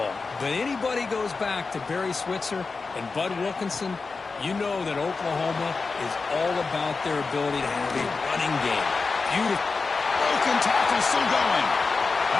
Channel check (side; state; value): right; quieter; 4.3 dB